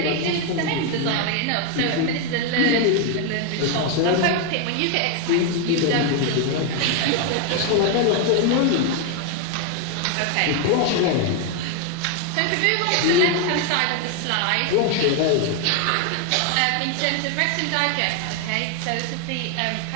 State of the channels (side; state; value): both; different; correlation 0.01